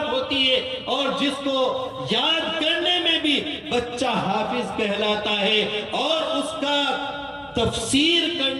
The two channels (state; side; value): identical; both; correlation 1.00